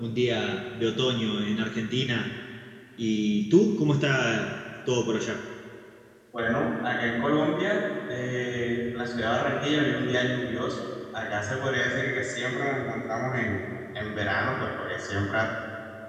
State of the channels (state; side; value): identical; both; correlation 1.00